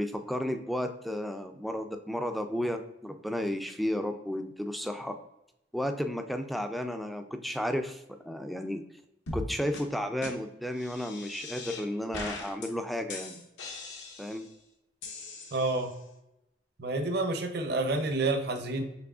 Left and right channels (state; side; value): normal; both; correlation 0.65